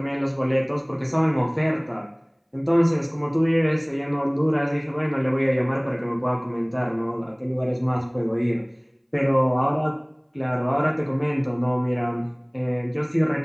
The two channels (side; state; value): both; identical; correlation 1.00